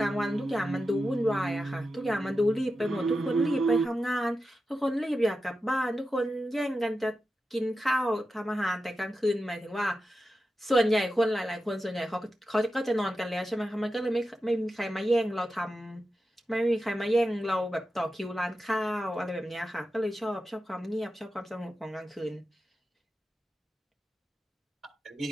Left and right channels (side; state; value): both; normal; correlation 0.91